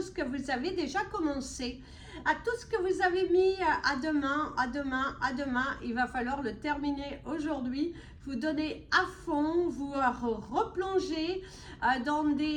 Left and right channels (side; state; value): both; identical; correlation 1.00